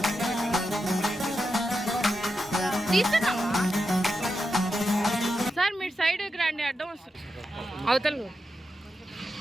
తీసుకున్నావా సార్? మీరు సైడ్కి రండి, అడ్డం వస్తుంది అవతల.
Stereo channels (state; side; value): normal; both; correlation 0.88